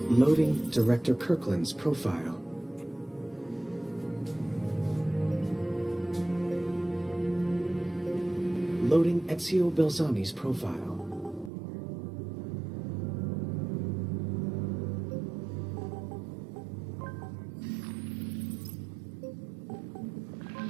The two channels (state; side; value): drops out; left; at 11.5 s